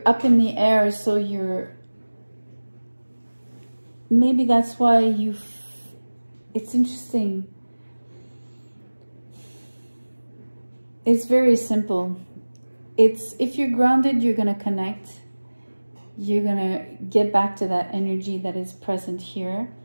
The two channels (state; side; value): inverted; both; correlation -1.00